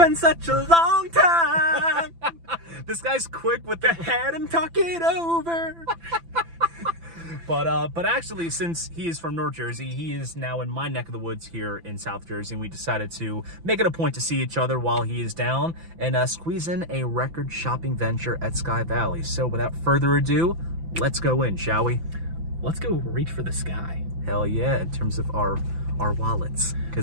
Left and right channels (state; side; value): late; left; 5.9 ms